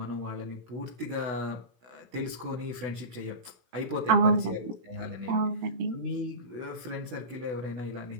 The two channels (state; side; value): late; left; 16 ms